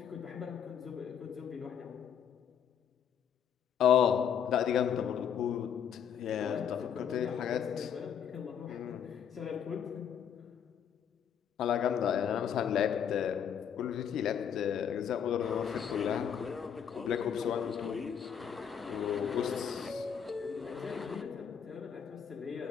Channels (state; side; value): quieter; right; 8.2 dB